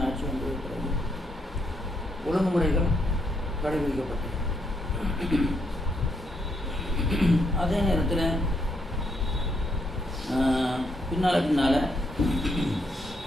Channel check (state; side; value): normal; both; correlation 0.76